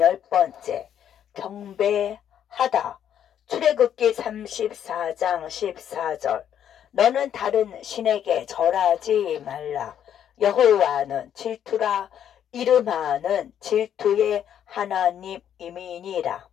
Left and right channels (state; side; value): quieter; right; 9.7 dB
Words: 경배하다. 출애굽기 34장 14절. 너는 다른 신에게 절하지 말라. 여호와는 질투라. 이름하는 질투의 하나님이니라.